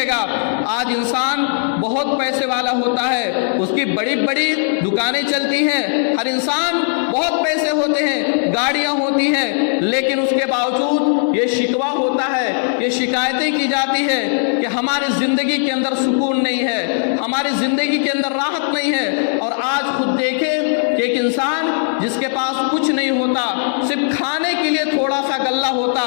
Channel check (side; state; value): right; silent; 67 dB below the other